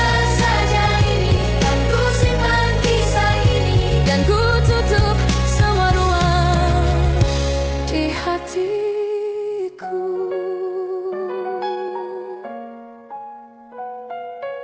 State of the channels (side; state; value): both; identical; correlation 1.00